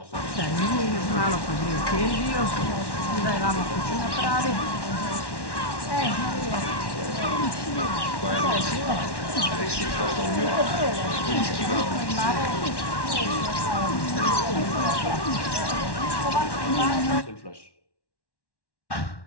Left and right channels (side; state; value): right; late; 1.1 ms